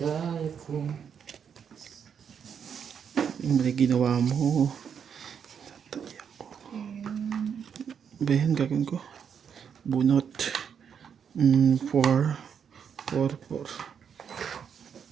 kong Yung mali ginawa mo. Tatay ako. Ba yan gagawin ko? Bunot. 4. 4.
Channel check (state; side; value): quieter; left; 7.5 dB